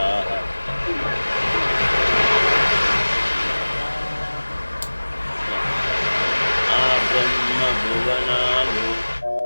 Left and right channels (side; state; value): both; inverted; correlation -1.00